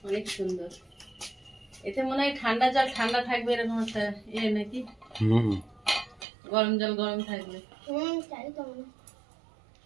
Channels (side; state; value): left; drops out; at 6.2 s